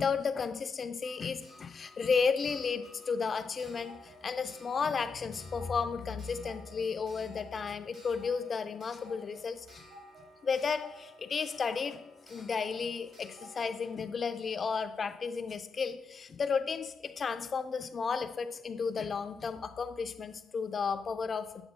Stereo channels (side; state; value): right; quieter; 5.2 dB